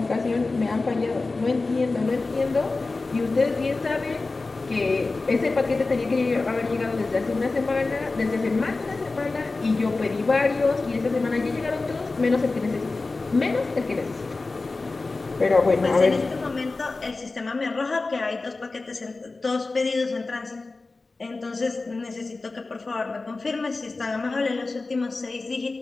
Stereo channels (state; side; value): quieter; right; 3.6 dB